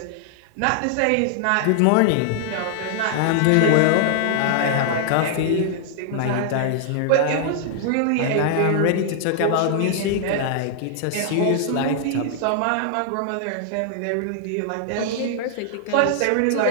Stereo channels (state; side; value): different; both; correlation 0.00